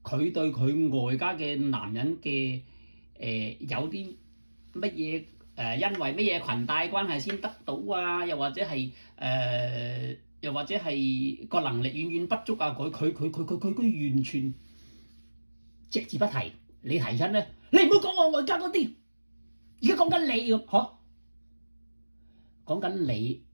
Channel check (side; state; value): both; inverted; correlation -1.00